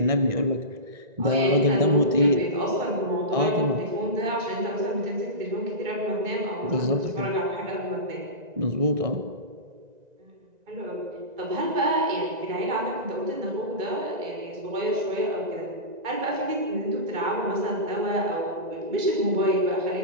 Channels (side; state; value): left; late; 1.9 ms